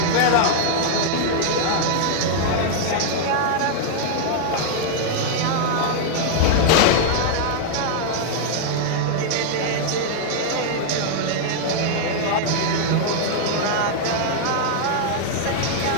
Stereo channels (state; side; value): different; both; correlation -0.01